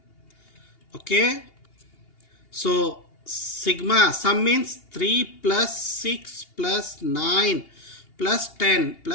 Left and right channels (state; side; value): late; right; 2.8 ms